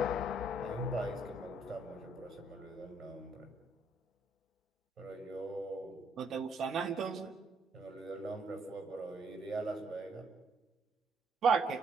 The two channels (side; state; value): both; normal; correlation 0.70